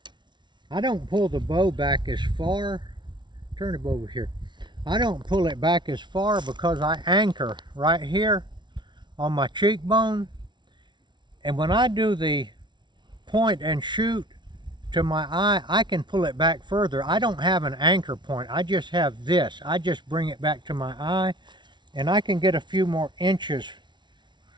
I don't pull the bow back as far. Turn it over here. I don't pull it back as far because I anchor right here on my cheekbone. And when I do the point and shoot to my eye, I can pull it back further. I don't have an anchor point. I just have this. I just bring it back to my eye and I can get a few more inches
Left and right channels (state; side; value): late; left; 0.22 ms